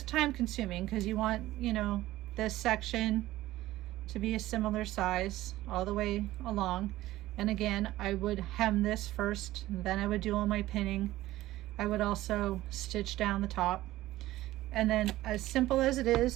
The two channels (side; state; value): left; quieter; 16.1 dB